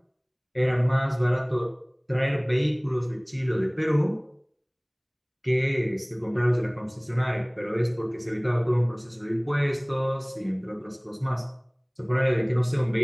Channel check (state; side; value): identical; both; correlation 1.00